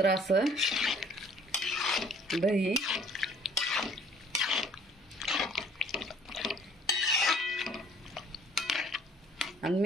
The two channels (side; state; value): both; normal; correlation 0.56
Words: असं दही आणि